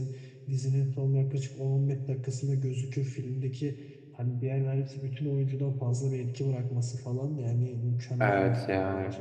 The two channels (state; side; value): identical; both; correlation 1.00